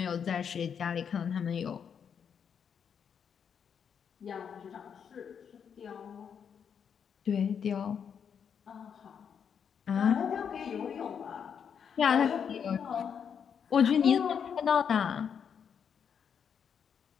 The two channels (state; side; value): quieter; right; 7.4 dB